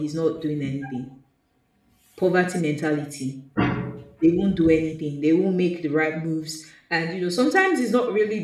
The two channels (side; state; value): both; identical; correlation 1.00